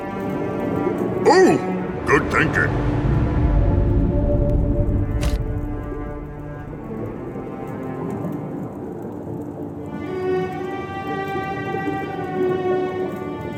Oh, good thinking.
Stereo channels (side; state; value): both; identical; correlation 1.00